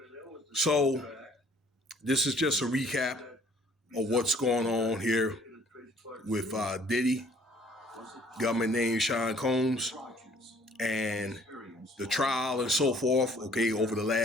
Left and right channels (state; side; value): normal; both; correlation 0.58